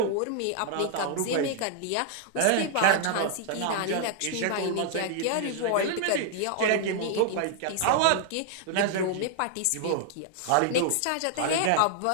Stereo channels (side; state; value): both; different; correlation -0.01